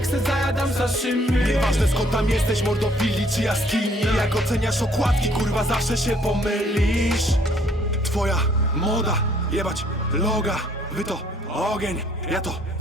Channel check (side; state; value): both; normal; correlation 0.62